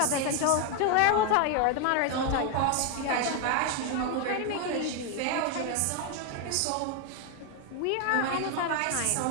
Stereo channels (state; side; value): different; both; correlation 0.01